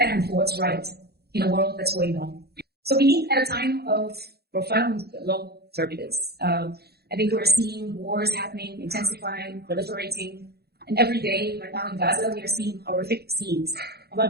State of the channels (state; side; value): late; left; 0.46 ms